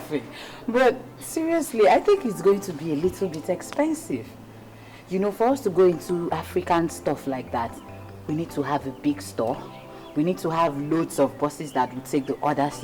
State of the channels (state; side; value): identical; both; correlation 1.00